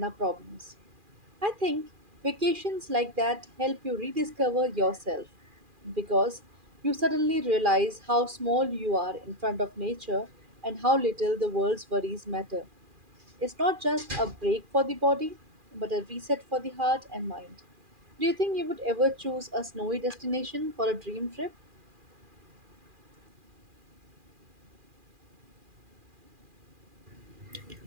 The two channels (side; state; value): left; late; 2.4 ms